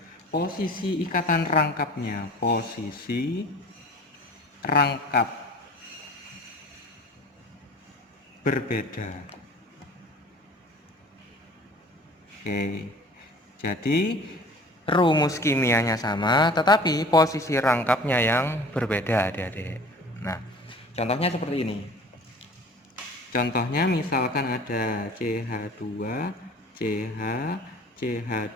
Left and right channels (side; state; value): both; normal; correlation 0.45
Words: Posisi ikatan rangkapnya, posisi rangkap berbeda. Oke, jadi rumus kimianya sama, tetapi posisi rangkapnya yang berbeda, adik-adik. Nah, contohnya seperti ini. Contohnya misalkan ada CH2, CH,